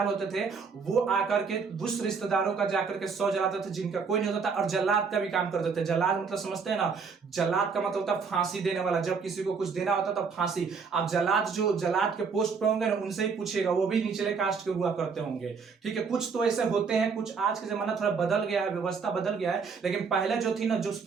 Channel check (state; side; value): quieter; left; 5.4 dB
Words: होते थे, वो आकर के उस रिश्तेदारों का जाकर के शव जलाते थे जिनका कोई नहीं होता था और जल्लाद का भी काम करते थे। जल्लाद मतलब समझते हैं ना, जल्लाद का मतलब होता है फांसी देने वाला। जब किसी को कुछ देना होता था फांसी। आप जल्लाद के पोस्ट पे होंगे ना, उनसे ही पूछिएगा, वो भी निचले कास्ट के हुआ करते होंगे। ठीक है, कुछ तो ऐसे होते हैं, कुछ आज के जमाना थोड़ा बदल गया है, व्यवस्था बदल गया है। लेकिन पहले जो थी ना, जो